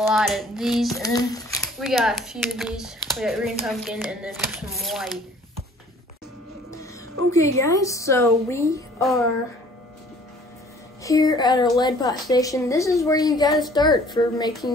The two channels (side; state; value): both; normal; correlation 0.53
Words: of these, and then we got a few of these. We got green pumpkin and then some white. Okay guys, so we are here at our lead pot station. This is where you gotta start for